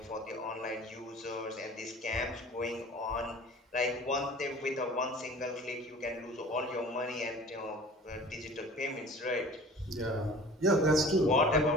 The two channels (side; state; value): both; normal; correlation 0.44